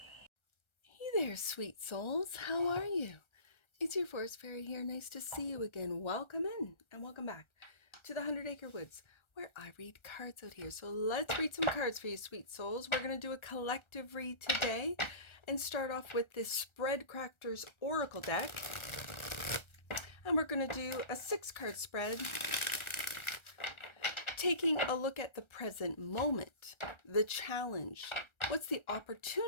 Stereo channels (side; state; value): right; late; 1.3 ms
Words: Hey there, sweet souls. How are you? It's your Forest Fairy here. Nice to see you again. Welcome in and welcome back to the 100 Acre Woods, where I read cards out here. So let's read some cards for you, sweet souls. We're going to do a collective read today and start off with this Spread CRAFTER'S Oracle deck. And we're going to do a 6-card spread, taking a look at the present moment, the challenge, what's the